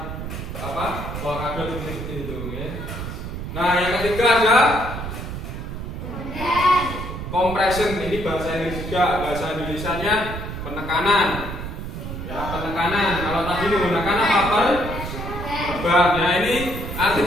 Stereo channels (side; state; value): right; noise; rumble, 7 dB below the sound